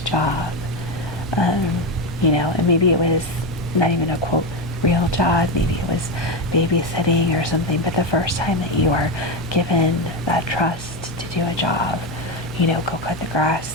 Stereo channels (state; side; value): normal; both; correlation 0.13